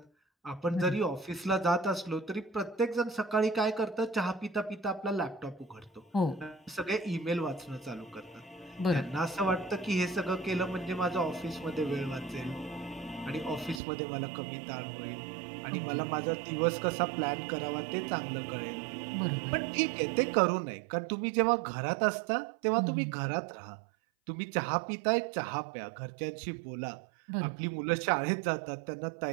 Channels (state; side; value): drops out; left; at 13.8 s